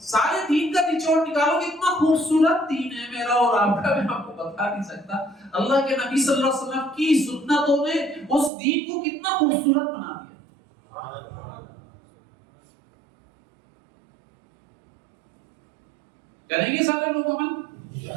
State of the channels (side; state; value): left; drops out; at 8.5 s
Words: سارے دین کا نچوڑ نکالو کہ اتنا خوبصورت دین ہے میرا اور آپ کا، میں آپ کو بتا نہیں سکتا۔ اللہ کے نبی صلی اللہ علیہ وسلم کی سنتوں نے اس دین کو کتنا خوبصورت بنا دیا۔ کریں گے سارے لوگ عمل؟